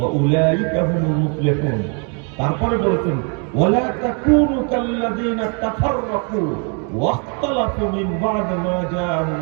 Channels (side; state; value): left; quieter; 37.5 dB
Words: উলাইকা হুমুল মুফলিহুন। তারপরে বলেছেন, ওয়ালা তাকুনু কাল্লাযীনা তাফাররাকু ওয়াখতালাফু মিন বা'দ মা